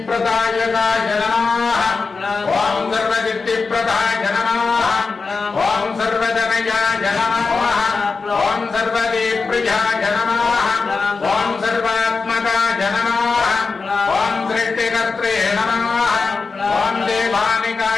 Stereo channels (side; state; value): right; quieter; 4.4 dB